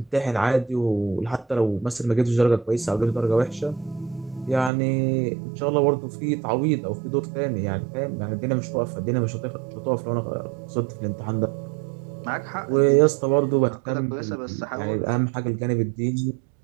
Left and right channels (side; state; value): left; drops out; at 4.7 s